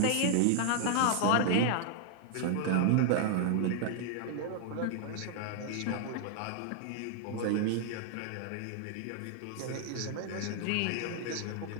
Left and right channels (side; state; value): both; different; correlation -0.01